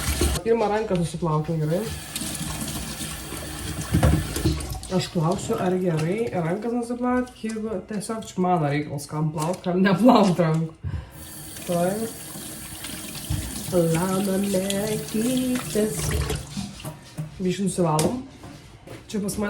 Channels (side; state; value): both; identical; correlation 1.00